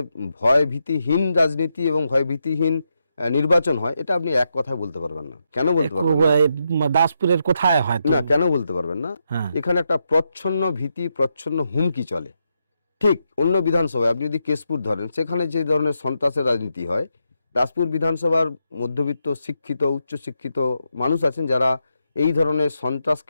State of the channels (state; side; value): inverted; both; correlation -0.84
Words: ভয় ভীতিহীন রাজনীতি এবং ভয় ভীতিহীন নির্বাচন হয়, এটা আপনি এক কথায় বলতে পারবেন না। কেন বলতে পারবেন না? দাসপুরের কোথায় হয় তো? না, কেন বলতে পারবেন না? হ্যাঁ। এখানে একটা প্রচ্ছন্ন ভীতি, প্রচ্ছন্ন হুমকি চলে। ঠিক অন্য বিধানসভায় আপনি যদি কেশপুর ধরেন, সেখানে যে ধরনের সন্ত্রাসের রাজনীতি হয়, দাসপুর বিধানসভার মধ্যবিত্ত শিক্ষিত উচ্চশিক্ষিত মানুষ আছেন যারা এই ধরনের